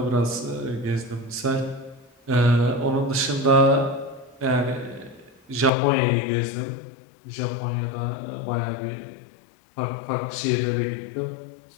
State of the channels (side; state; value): right; drops out; at 5.7 s